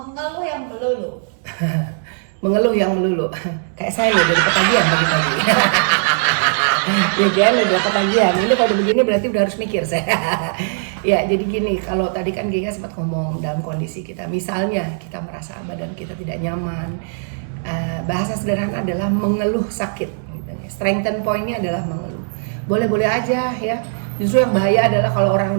yang melulu. Mengeluh yang melulu. Kayak saya nih dari ketagihan pagi-pagi. Ya kan udah ketagihan. Ini kalau begini berarti udah harus mikir saya. Ya, jadi gini, kalau tadi kan Giga sempat ngomong dalam kondisi kita, misalnya kita merasa badan kita tidak nyaman. Bahasa sederhana adalah mengeluh sakit. Gitu. Strengthen point-nya adalah mengeluh. Boleh-boleh aja ya. Justru yang bahaya adalah kalau orang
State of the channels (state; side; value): silent; left; digital silence